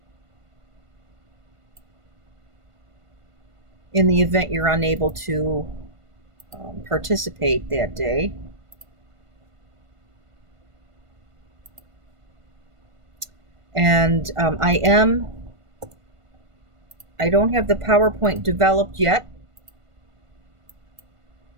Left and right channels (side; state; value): left; late; 1.5 ms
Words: in the event you're unable to participate that day. And I don't have the PowerPoint developed yet,